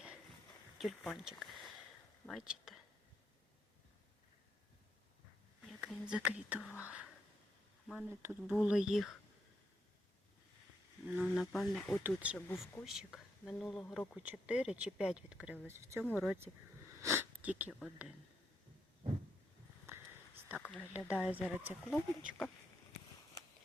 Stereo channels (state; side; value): normal; both; correlation 0.79